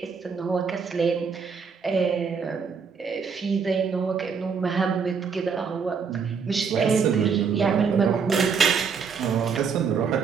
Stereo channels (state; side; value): quieter; left; 5.9 dB